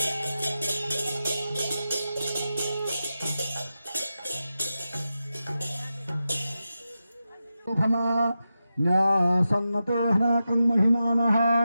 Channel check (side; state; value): both; inverted; correlation -0.90